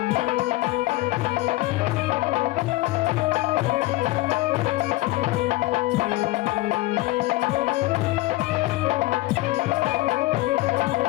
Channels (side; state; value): right; quieter; 19.0 dB